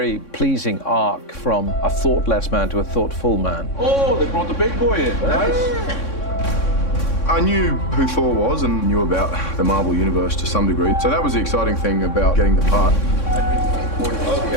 pleasing arc from a thoughtless man to a thoughtful man. Oh, they brought the big boy in. Nice. I knew who Thor was and knew about the Marvel Universe to some degree. So that was the exciting thing about getting the part.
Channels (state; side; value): late; right; 3.6 ms